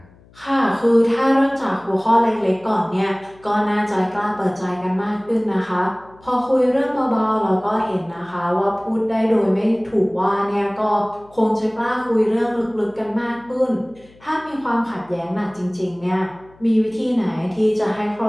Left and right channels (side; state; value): left; noise; hum, 27 dB below the sound